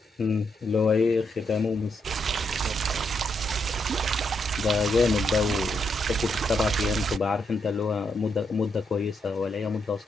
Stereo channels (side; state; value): both; normal; correlation 0.79